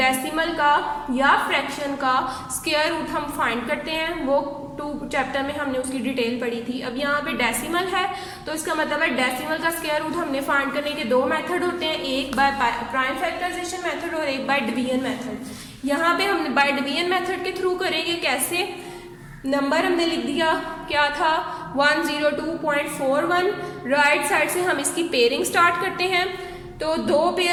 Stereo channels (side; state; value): both; identical; correlation 1.00